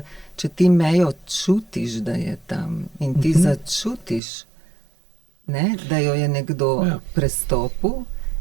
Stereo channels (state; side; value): drops out; left; at 4.2 s